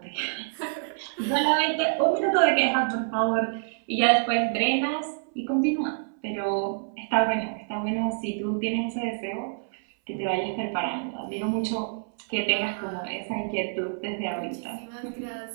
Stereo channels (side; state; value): left; silent; 60 dB below the other